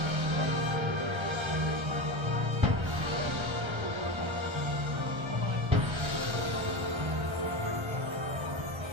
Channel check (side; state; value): left; late; 1.3 ms